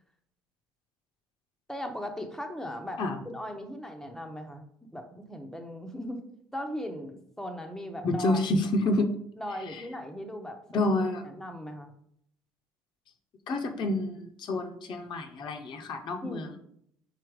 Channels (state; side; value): normal; both; correlation 0.63